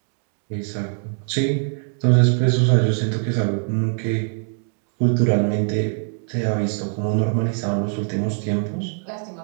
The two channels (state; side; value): silent; left; 55 dB below the other